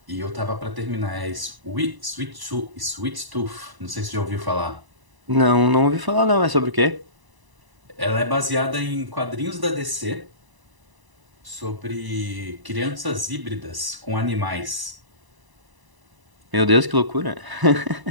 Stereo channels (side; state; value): left; late; 1.0 ms